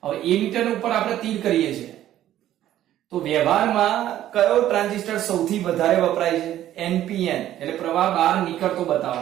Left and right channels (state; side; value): quieter; left; 12.6 dB